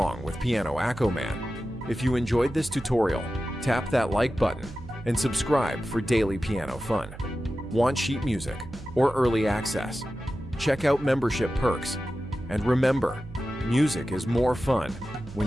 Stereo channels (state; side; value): noise; right; hum, 14 dB below the sound